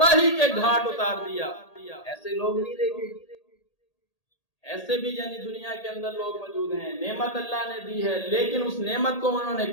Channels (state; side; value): late; right; 1.8 ms